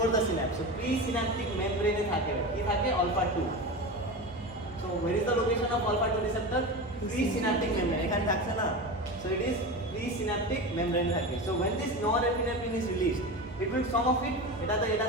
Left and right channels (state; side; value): normal; both; correlation 0.25